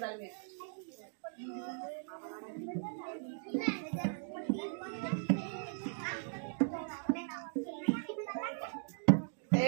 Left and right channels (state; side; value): silent; left; digital silence